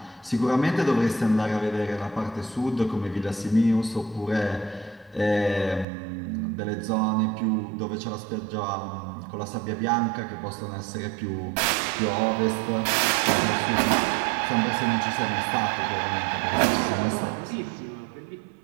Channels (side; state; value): left; drops out; at 5.9 s